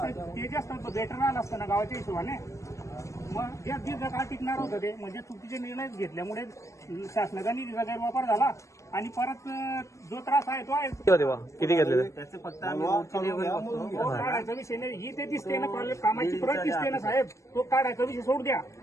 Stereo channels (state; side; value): late; right; 0.15 ms